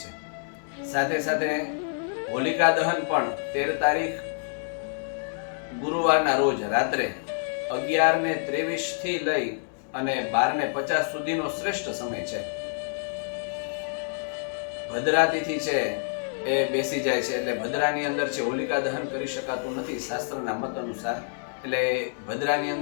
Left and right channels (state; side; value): silent; right; digital silence